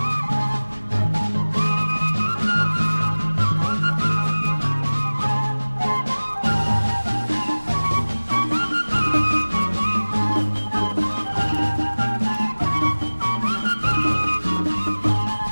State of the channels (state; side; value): inverted; both; correlation -1.00